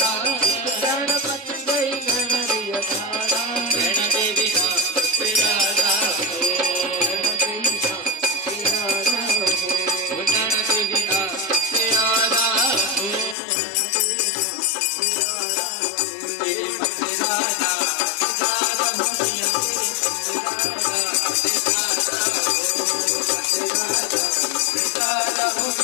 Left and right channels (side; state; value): right; drops out; at 13.4 s